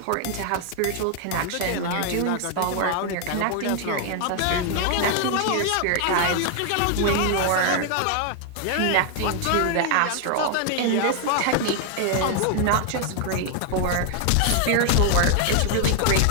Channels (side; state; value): both; different; correlation 0.00